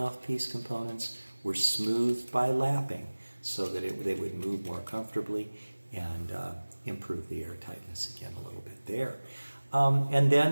components were smoothed by lapping so that they would move more comfortably and improve the airtightness again a little bit there. And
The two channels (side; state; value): both; inverted; correlation -1.00